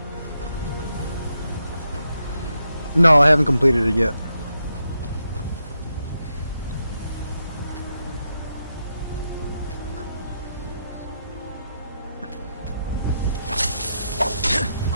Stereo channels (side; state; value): both; inverted; correlation -0.83